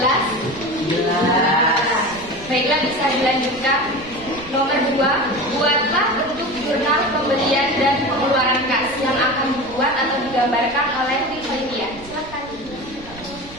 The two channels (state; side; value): noise; right; rumble, 20 dB below the sound